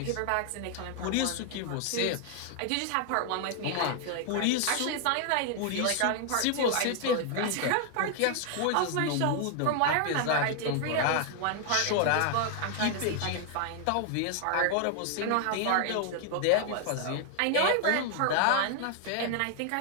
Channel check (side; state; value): both; different; correlation 0.00